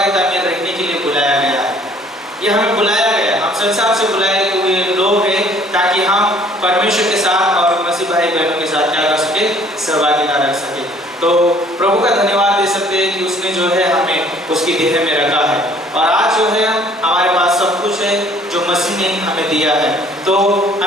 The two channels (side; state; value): both; normal; correlation 0.57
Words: में रहने के लिए बुलाया गया है। ये हमें बुलाया गया, हम संसार से बुलाए हुए लोग हैं ताकि हम परमेश्वर के साथ और मसीह भाई बहनों के साथ क्या कर सके, सहभागिता रख सके। तो प्रभु का धन्यवाद दे सकते हैं कि उसने जो है हमें उसकी देह में रखा है और आज जो है हमारे पास सब कुछ है जो मसीह ने हमें दिया है। तो